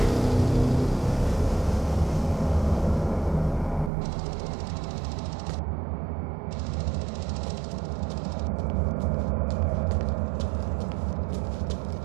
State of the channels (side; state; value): left; drops out; at 3.9 s